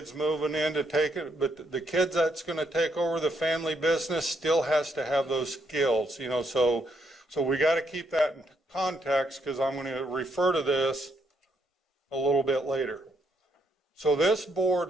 moving in to take it, but the kids that's going to take over the family business still has to have those skills, you know, so we got to keep that in context, because I'm going to refer to this a little bit later. So this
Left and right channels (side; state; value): both; normal; correlation 0.75